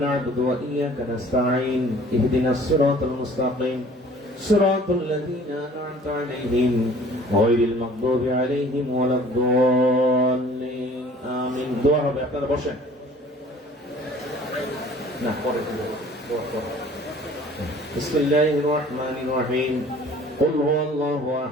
نعبد وإياك نستعين اهدنا الصراط المستقيم صراط الذين أنعمت عليهم غير المغضوب عليهم ولا الضالين آمين দোয়া হবে আপনারা বসেন না পরে দোয়া بسم الله الرحمن الرحيم قل هو الله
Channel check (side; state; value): both; normal; correlation 0.51